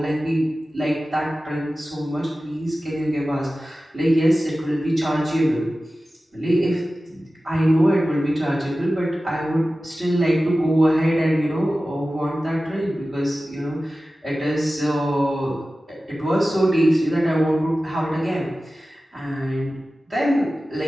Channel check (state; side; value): normal; both; correlation 0.95